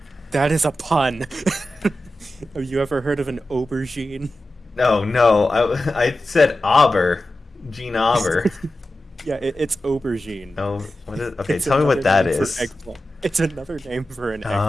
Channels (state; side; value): normal; both; correlation 0.93